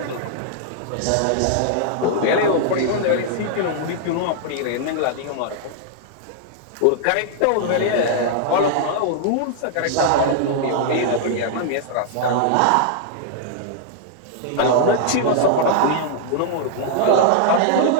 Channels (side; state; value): both; different; correlation -0.01